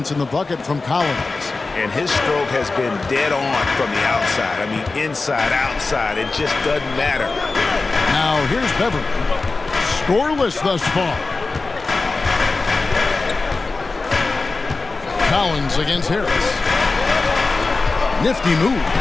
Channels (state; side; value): quieter; right; 3.8 dB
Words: in the bucket from Collins. And his stroke has been dead on from the outside. I mean, inside, outside, it just doesn't matter. Now here's Beverly. Scoreless thus far. Collins against Harris. Nifty move,